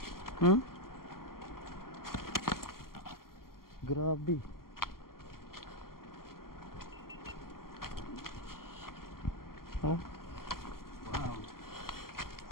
Hmm? Grabe. Oh. Wow.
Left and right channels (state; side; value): late; right; 0.92 ms